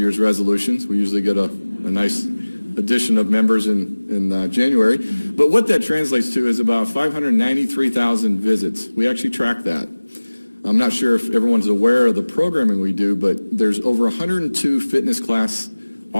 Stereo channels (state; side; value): inverted; both; correlation -1.00